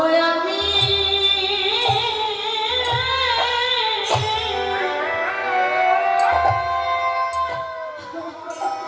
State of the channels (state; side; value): identical; both; correlation 1.00